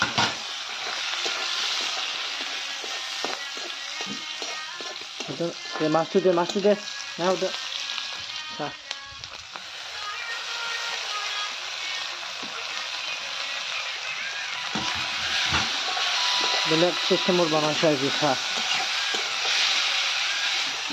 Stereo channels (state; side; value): identical; both; correlation 1.00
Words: দে মাছটো দে নাও দে বেলেগ চিষ্টেমত বনাইছে আজি খা